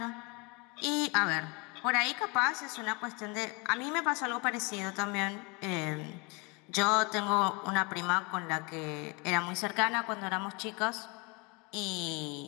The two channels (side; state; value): right; quieter; 29.9 dB